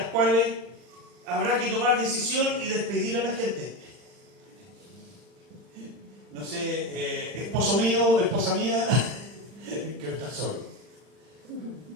cuales habrá que tomar decisión y despedir a la gente. No sé, esposo mío, esposa mía, quiero estar solo.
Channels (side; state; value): left; late; 40 ms